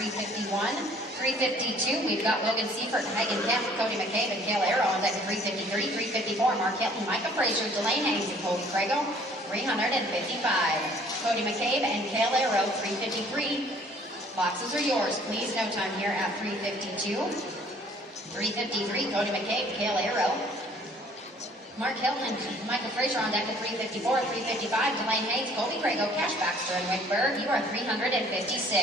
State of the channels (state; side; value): normal; both; correlation 0.56